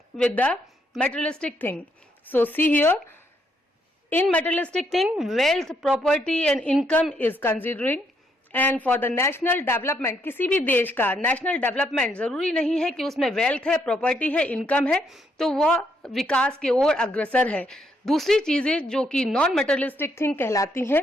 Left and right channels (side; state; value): both; normal; correlation 0.74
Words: with the materialistic thing? So see here, in materialistic thing, wealth, property and income is considering. And for the national development, किसी भी देश का national development जरूरी नहीं है कि उसमें wealth है, प्रॉपर्टी है, इनकम है तो वह विकास की ओर अग्रसर है. दूसरी चीजें जो कि नॉन मटेरियलिस्टिक थिंग कहलाती